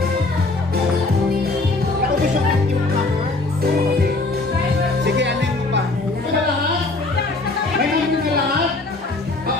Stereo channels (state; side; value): quieter; right; 3.2 dB